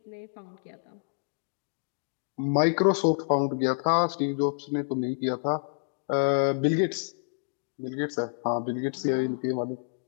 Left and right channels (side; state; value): right; silent; digital silence